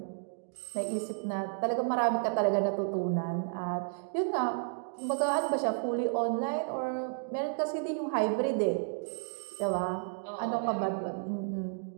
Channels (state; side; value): silent; left; digital silence